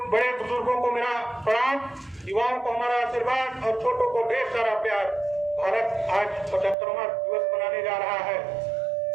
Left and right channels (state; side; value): drops out; left; at 6.8 s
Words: बुजुर्गों को मेरा प्रणाम, युवाओं को हमारा आशीर्वाद और छोटों को ढेर सारा प्यार। भारत आज 75वां दिवस मनाने जा रहा है।